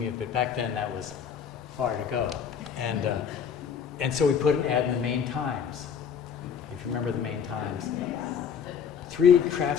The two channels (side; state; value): right; quieter; 7.3 dB